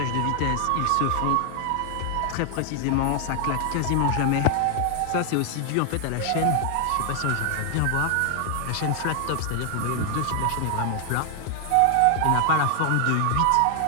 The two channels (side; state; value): both; different; correlation 0.00